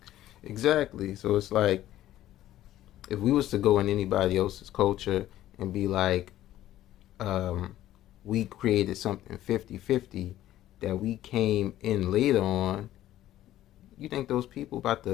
Exactly. So it's like, if we was to go in anybody else's culture and be like, we created something 50-50 that we came in later on, you think those people about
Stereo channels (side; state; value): right; quieter; 13.6 dB